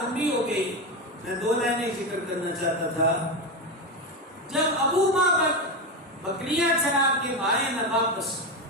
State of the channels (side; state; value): both; normal; correlation 0.15